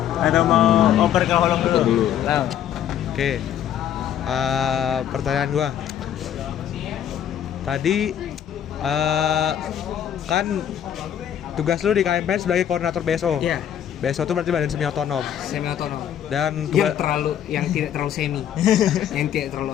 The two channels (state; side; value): quieter; right; 9.9 dB